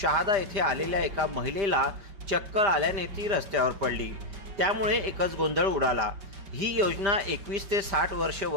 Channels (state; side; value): late; left; 5.1 ms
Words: येथे आलेल्या एका महिलेला चक्कर आल्याने ती रस्त्यावर पडली। त्यामुळे एकच गोंधळ उडाला। ही योजना 21 ते 60 वर्ष